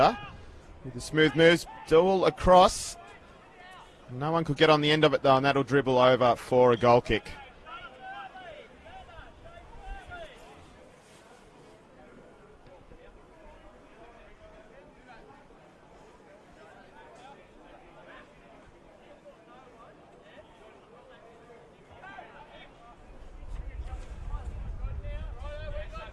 with the smooth moves, duel across. No one could get on the end of it though, and that'll dribble over for a goal kick.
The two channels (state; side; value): identical; both; correlation 1.00